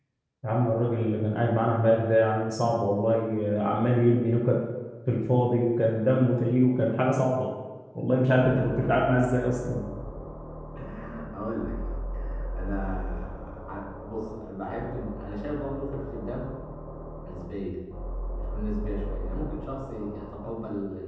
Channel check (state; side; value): identical; both; correlation 1.00